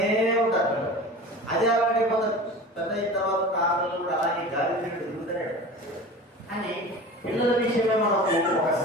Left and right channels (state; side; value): normal; both; correlation 0.35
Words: ఉంటారు. అదే అలాంటి కొంత పెద్ద అయిన తర్వాత కాలంలో కూడా అలాగే గాలి తిరిగినట్టు తిరుగుతూనే అని పిల్లల విషయమే మనకు ఒక